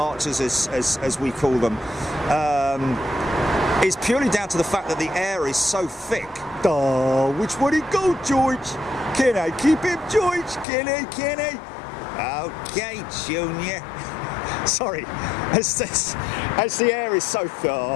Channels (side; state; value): right; drops out; at 10.7 s